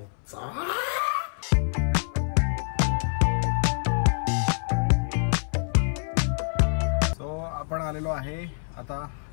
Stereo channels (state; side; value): silent; right; 59 dB below the other